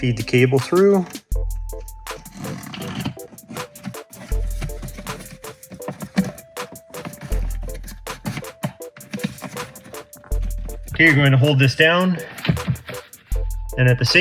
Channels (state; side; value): identical; both; correlation 1.00